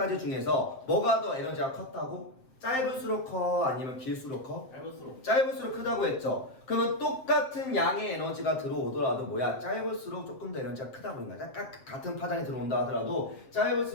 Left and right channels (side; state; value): right; late; 7.6 ms